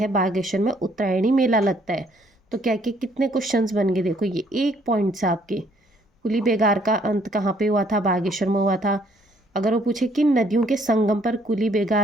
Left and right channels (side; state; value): both; normal; correlation 0.65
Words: बागेश्वर में उत्तरायणी मेला लगता है। तो क्या कि कितने क्वेश्चंस बन गए, देखो ये 1 पॉइंट से आपके। कुली बेगार का अंत कहाँ पे हुआ था, बागेश्वर में हुआ था। अगर वो पूछे किन नदियों के संगम पर कुली